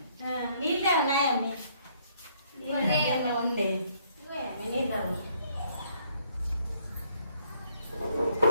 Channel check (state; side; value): inverted; both; correlation -0.67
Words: నీళ్ళే ఉన్నాయండి ఉండే నీళ్ళు